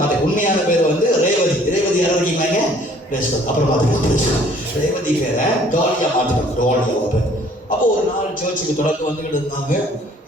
உண்மையான பேர் வந்து ரேவதி. யாரும் இருக்கீங்க? அப்புறம் பார்த்துக்கலாம். ரேவதி பேரை டாலியா மாத்திட்டாங்க. டாலி அவங்க பேர். அப்போ ஒரு நாள் சர்ச்சுக்கு தொடர்ந்து வந்துகிட்டு இருந்தாங்க.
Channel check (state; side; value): normal; both; correlation 0.57